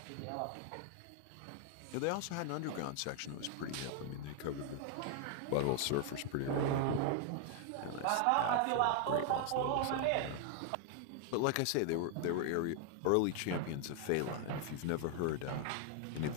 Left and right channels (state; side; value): different; both; correlation 0.00